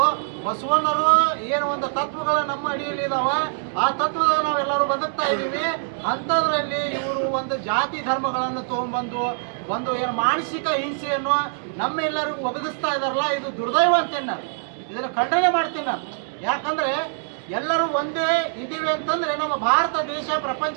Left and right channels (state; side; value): silent; left; digital silence